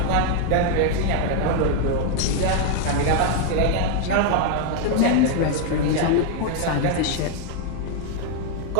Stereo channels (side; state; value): both; different; correlation 0.00